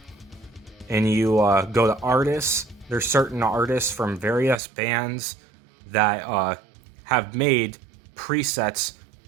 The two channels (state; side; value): drops out; left; at 4.6 s